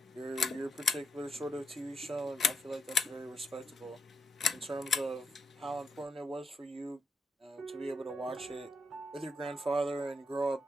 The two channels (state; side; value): normal; both; correlation 0.81